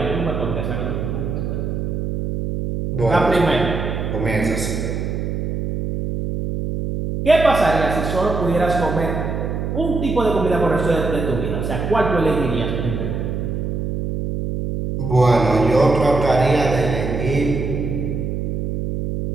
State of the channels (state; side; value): noise; right; hum, 3 dB below the sound